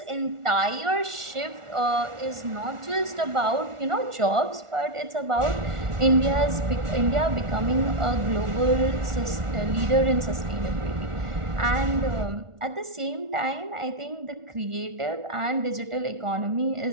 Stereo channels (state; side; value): late; left; 1.4 ms